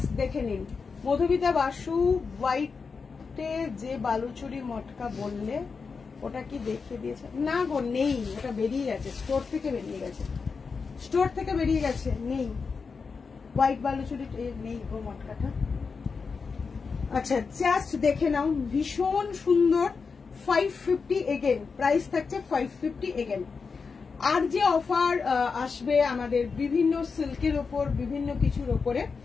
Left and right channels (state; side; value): quieter; right; 5.1 dB